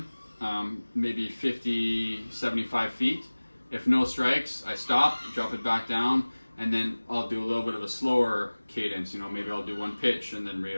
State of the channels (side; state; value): both; inverted; correlation -1.00